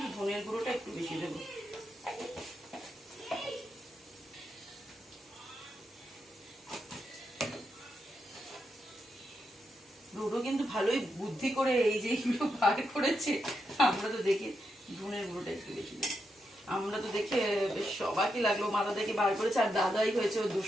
ধনের গুঁড়োটা একটু বেশি দেবো। ডোডো কিন্তু ভালোই বুদ্ধি করে এই যে এগুলো বার করেছে, আমরা তো দেখে ধনের গুঁড়োটা একটু বেশি দেবো। আমরা তো দেখে বেশ সবাইকে লাগলো, মাথা থেকে বার করেছে, আর দাদাই হয়েছে ও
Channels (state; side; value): normal; both; correlation 0.84